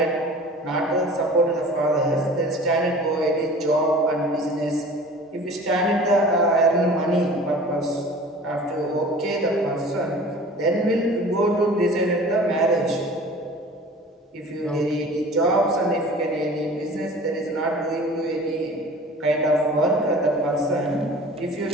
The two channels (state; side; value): normal; both; correlation 0.43